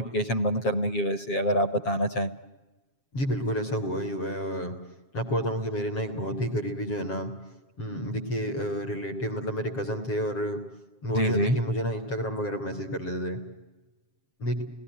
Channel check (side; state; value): right; late; 7.4 ms